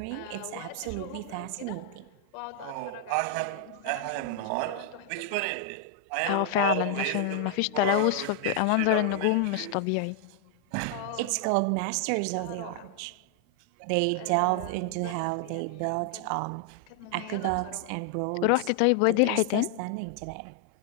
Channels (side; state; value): both; different; correlation 0.00